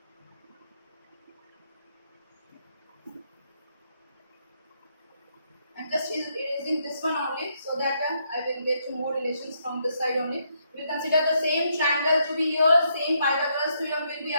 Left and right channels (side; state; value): both; inverted; correlation -0.75